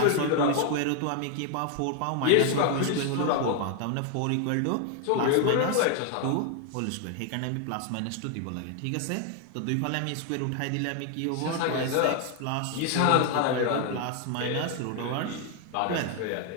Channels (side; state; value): both; different; correlation 0.00